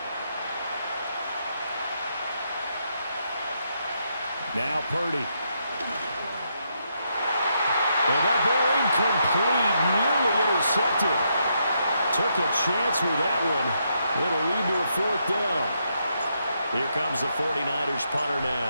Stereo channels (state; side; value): inverted; both; correlation -0.79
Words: Now Purdy. And that ball incomplete. Nearly intercepted. Took a chance with that one. It'll lead to a 4th down. Here comes the 49ers punter